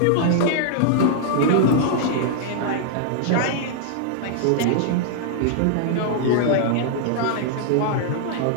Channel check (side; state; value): both; different; correlation -0.01